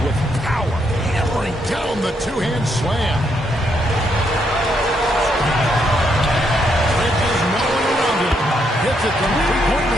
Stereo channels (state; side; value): normal; both; correlation 0.76